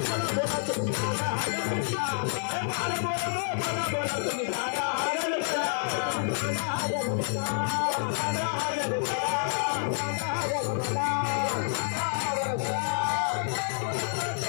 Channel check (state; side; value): silent; right; 56 dB below the other